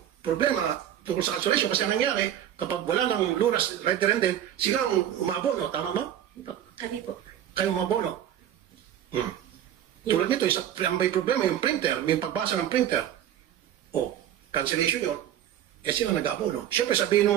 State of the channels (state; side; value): quieter; left; 11.0 dB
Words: problema tungkol sa cancellation. Kasi ang nangyari, kapag wala ng lunas right there and then, sila ang umabono. Tama ba? Kami po. Kayo umabono. Tulad nito, may problema yung printer, may pagbasa ng printer. Cancellation yun. Sila nag-abono. Siyempre, sabihin